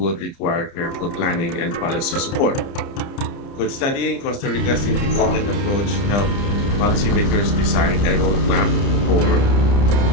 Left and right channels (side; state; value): right; late; 29 ms